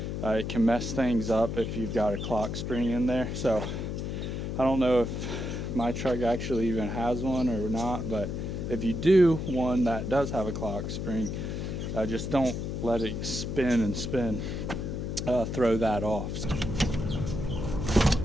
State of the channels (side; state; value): left; noise; hum, 4 dB below the sound